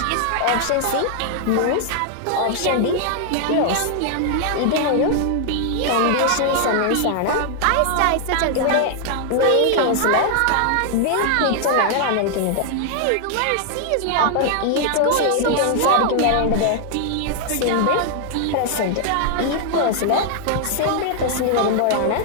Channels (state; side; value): different; both; correlation 0.00